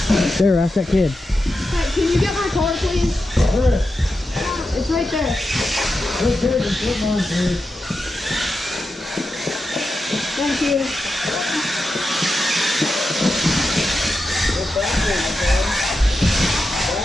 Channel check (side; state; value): both; normal; correlation 0.89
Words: not. There, ask that kid. Hey, can you get my car, please? Where? It's right there. Let's take it. Come on, please. Thank you. Go backwards, son.